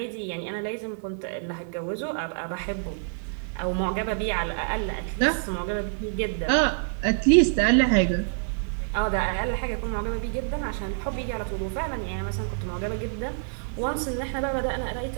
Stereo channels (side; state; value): left; silent; digital silence